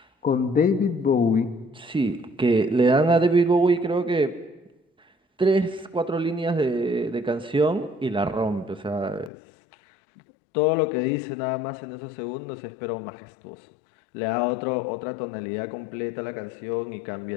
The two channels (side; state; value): right; drops out; at 9.3 s